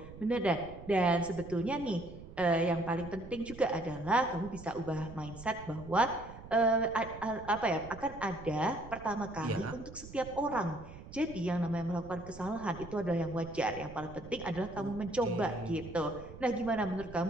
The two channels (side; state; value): right; noise; rumble, 15 dB below the sound